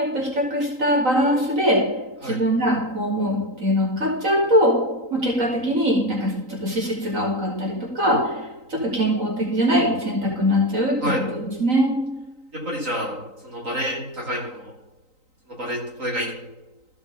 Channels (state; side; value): late; left; 3.9 ms